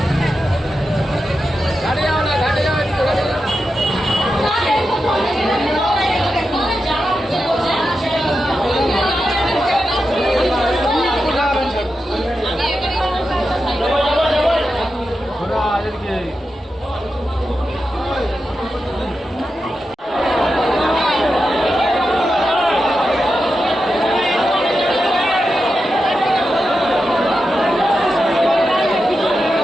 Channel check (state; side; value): normal; both; correlation 0.89